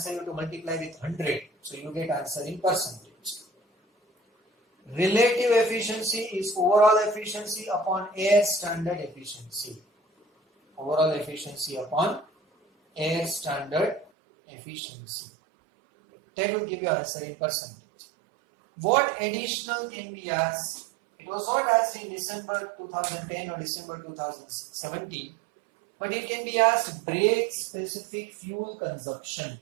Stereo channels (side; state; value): left; drops out; at 14.1 s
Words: you have to multiply with 100. So you get answer in percentage. Relative efficiency is overall efficiency upon air standard efficiency. Overall efficiency upon air standard efficiency. That will give you answer in percentage. What additional can be asked? It was not asked in December 2010 or December 2017, but it can be asked brake specific fuel consumption.